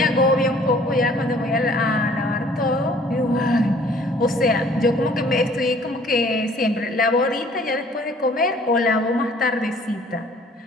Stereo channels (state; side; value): normal; both; correlation 0.56